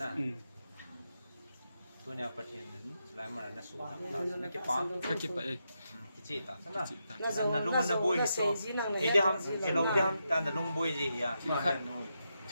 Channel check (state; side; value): inverted; both; correlation -0.84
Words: tôi nhà phát hiện lại mà nó xuống nó cái phá cái kia vậy cái chị ta thế nào nó lung nó bôi thì thì đi ham cái lông đi ham ta nó lung bôi gì à